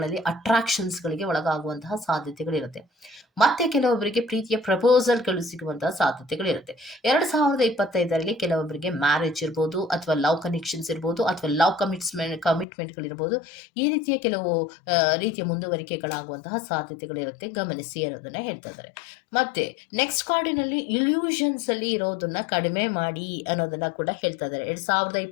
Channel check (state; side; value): drops out; right; at 12.7 s